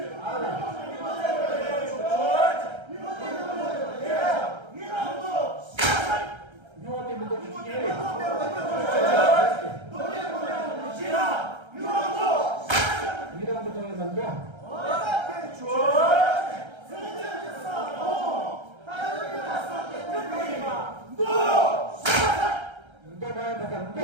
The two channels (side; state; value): left; late; 1.3 ms